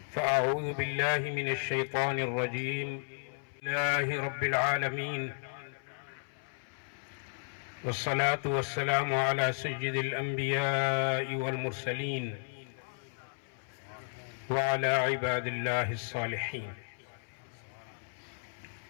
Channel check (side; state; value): right; silent; 55 dB below the other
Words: فأعوذ بالله من الشيطان الرجيم. لله رب العالمين، والصلاة والسلام على سيد الأنبياء والمرسلين وعلى عباد الله الصالحين.